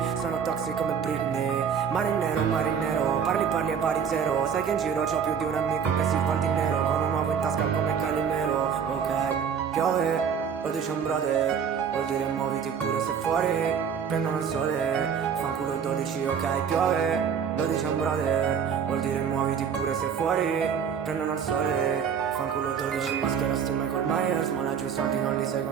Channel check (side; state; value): left; quieter; 7.2 dB